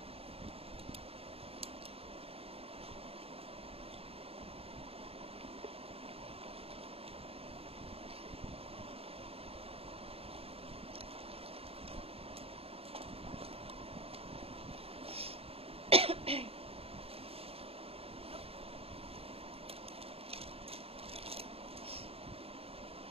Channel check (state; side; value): late; left; 0.28 ms